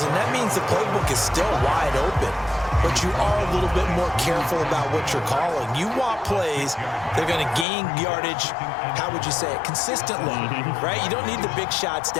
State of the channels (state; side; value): drops out; right; at 7.7 s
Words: and that means the playbook is still wide open. But you are a little bit more careful about what you're calling. You want plays that are going to gain yardage, how would you say it, consistently, right? You don't need the big shots